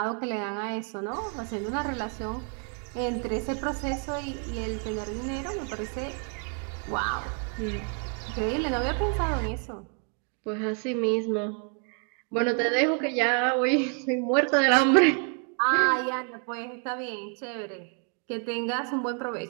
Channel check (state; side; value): quieter; left; 39.0 dB